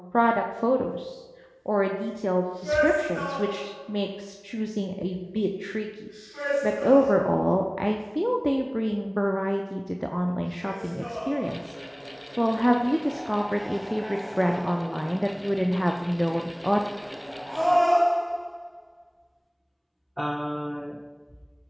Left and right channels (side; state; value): both; identical; correlation 1.00